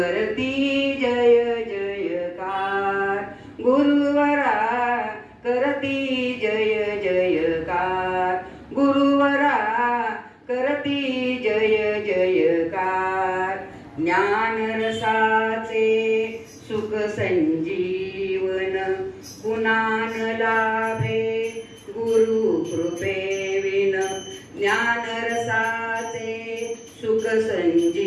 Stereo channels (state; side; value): identical; both; correlation 1.00